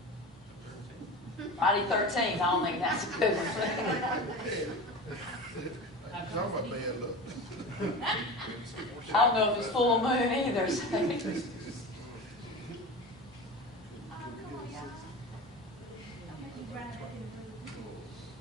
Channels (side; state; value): both; normal; correlation 0.31